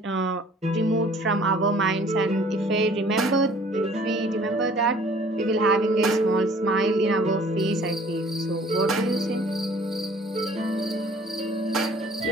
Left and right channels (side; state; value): both; normal; correlation 0.54